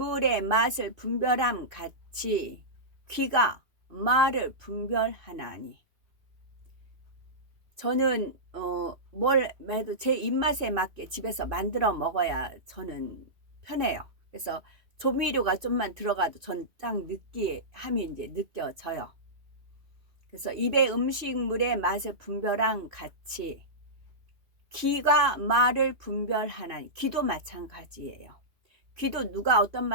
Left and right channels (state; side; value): late; left; 2.6 ms